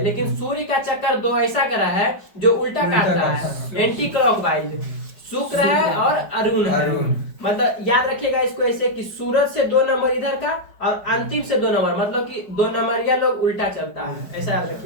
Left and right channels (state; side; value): late; right; 4.9 ms